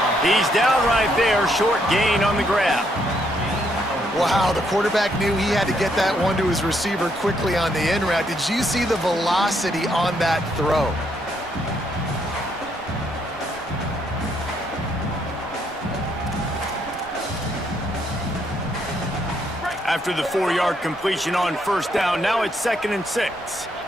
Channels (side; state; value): both; normal; correlation 0.73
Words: He's down right there, short gain on the grab. Wow, the quarterback knew he had to get that one to his receiver quickly on the in route. Did you see the velocity on that throw? After the 4-yard completion on first down, now it's 2nd and 6.